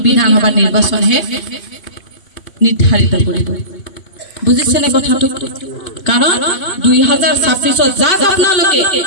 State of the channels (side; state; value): right; late; 2.7 ms